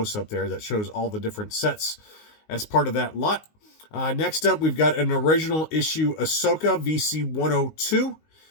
there that shows all the different sets as part of that lot. Next up, we've got an original issue Ahsoka VC102.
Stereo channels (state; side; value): late; right; 19 ms